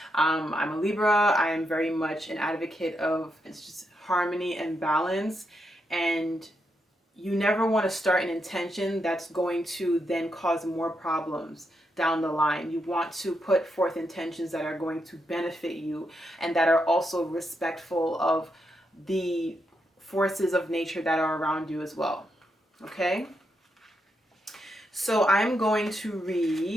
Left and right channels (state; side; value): normal; both; correlation 0.82